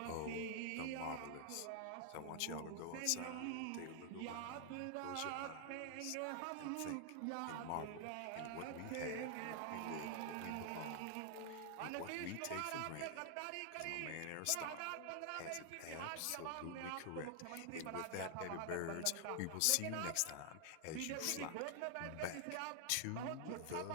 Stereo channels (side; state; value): both; different; correlation 0.00